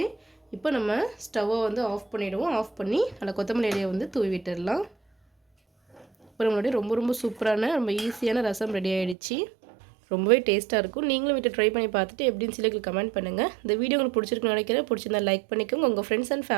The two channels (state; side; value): drops out; left; at 9.2 s